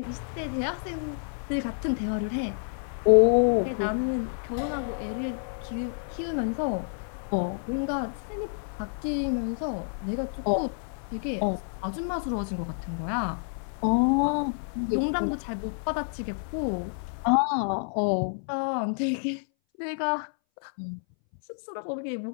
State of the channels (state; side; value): silent; right; 59 dB below the other